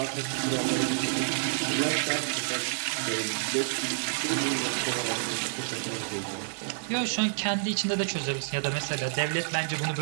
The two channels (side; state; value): left; silent; 59 dB below the other